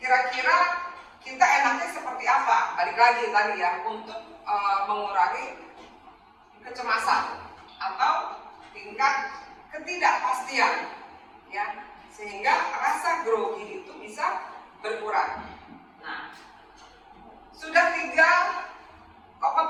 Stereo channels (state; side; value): identical; both; correlation 1.00